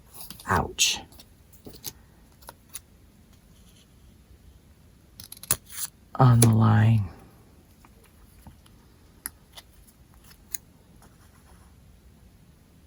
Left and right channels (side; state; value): both; identical; correlation 1.00